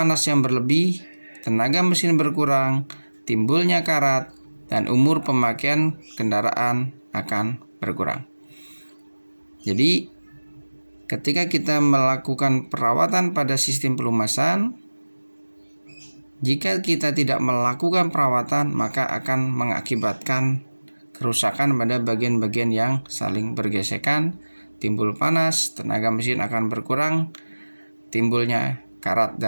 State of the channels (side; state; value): both; inverted; correlation -1.00